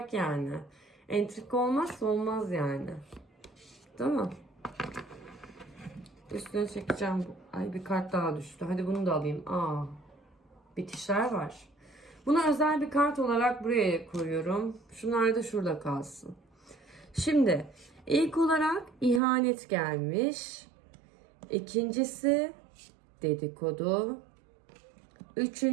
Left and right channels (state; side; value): drops out; left; at 19.2 s